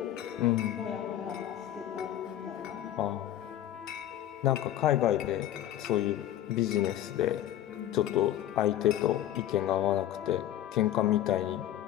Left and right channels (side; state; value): right; quieter; 12.3 dB